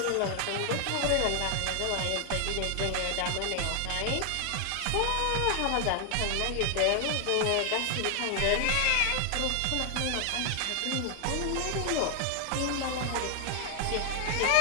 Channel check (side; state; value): both; different; correlation 0.00